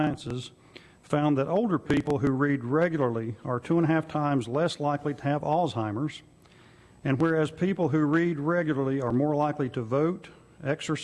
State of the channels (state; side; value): identical; both; correlation 1.00